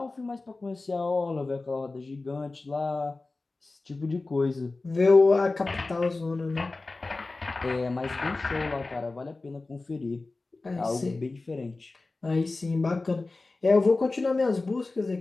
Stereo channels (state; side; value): quieter; right; 3.4 dB